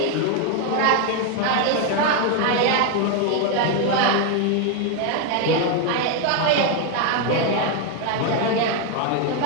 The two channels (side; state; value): both; different; correlation 0.01